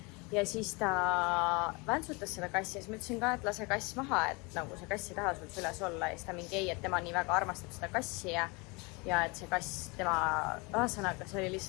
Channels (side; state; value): right; quieter; 28.2 dB